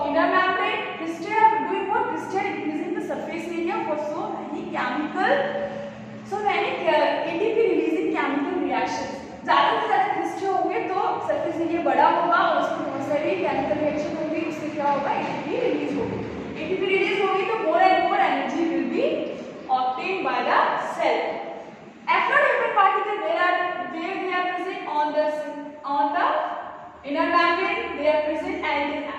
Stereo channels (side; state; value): both; identical; correlation 1.00